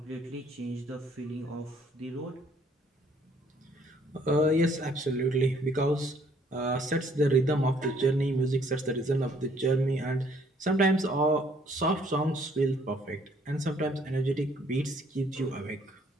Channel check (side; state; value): both; normal; correlation 0.63